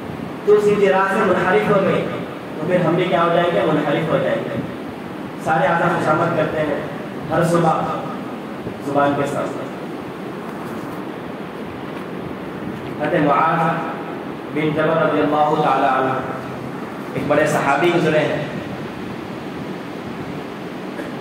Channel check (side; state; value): both; identical; correlation 1.00